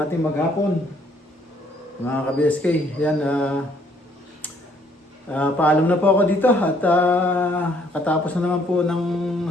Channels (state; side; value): normal; both; correlation 0.65